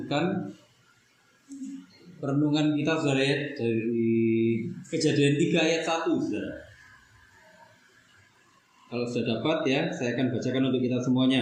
perenungan kita saudara ya, dari Kejadian 3 ayat 1 saudara. Kalau sudah dapat ya, saya akan bacakan untuk kita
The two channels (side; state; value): both; identical; correlation 1.00